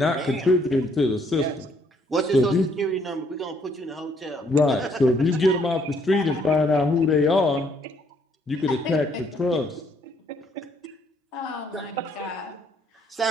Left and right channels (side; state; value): both; normal; correlation 0.67